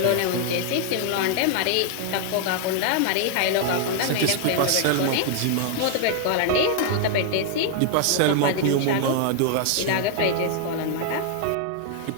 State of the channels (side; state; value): both; different; correlation 0.00